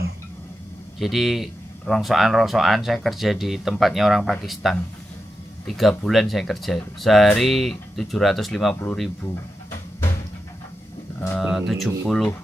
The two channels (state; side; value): normal; both; correlation 0.89